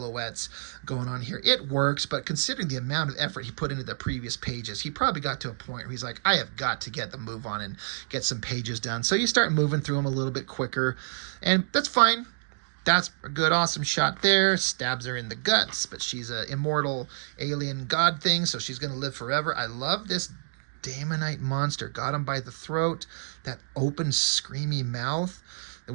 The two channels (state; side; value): silent; left; digital silence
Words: going on here. It works, but considering the amount of effort he put into the previous pages, he probably got to a point where he's like, I have got to get the move on and get some pages done. So you start moving through them a little bit quicker, and that's fine. That's a good, awesome shot there. Stabs her in the guts, but she's an immortal alien god thing, so she's going to live forever. I love this Daemonite monster. Got him by the throat. That open, screamy mouth. The